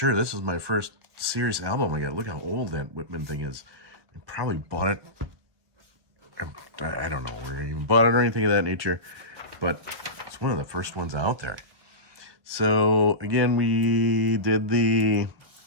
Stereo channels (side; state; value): left; late; 1.5 ms